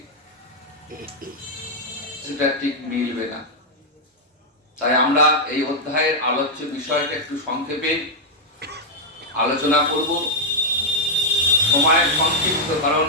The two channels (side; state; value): both; normal; correlation -0.04